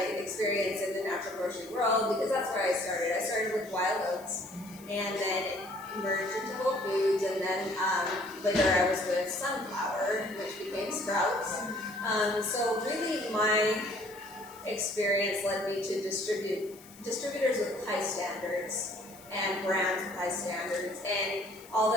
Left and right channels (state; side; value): noise; left; hiss, 21 dB below the sound